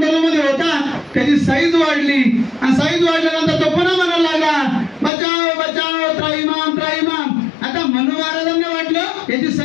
होता। त्याची साईज वाढली आणि साईज वाढल्यानंतर तो पुन्हा म्हणायला लागला, बचाओ बचाओ त्राहिमाम त्राहिमाम। आता मनू महाराजांना वाटलं याची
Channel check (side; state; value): right; drops out; at 5.1 s